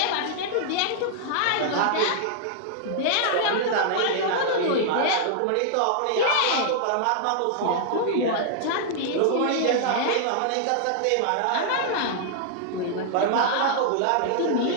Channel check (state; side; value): different; both; correlation -0.01